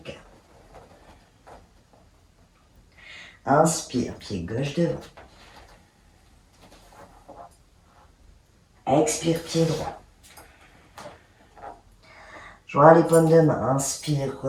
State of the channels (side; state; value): both; identical; correlation 1.00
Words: Inspire, pied gauche devant. Expire, pied droit. Joins les paumes de main. Inspire,